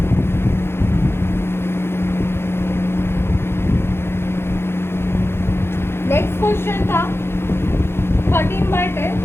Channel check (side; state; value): right; late; 0.12 ms